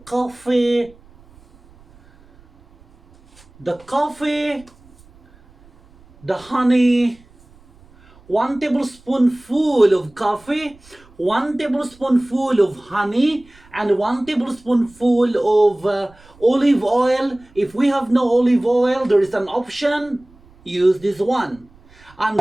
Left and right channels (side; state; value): right; noise; rumble, 27 dB below the sound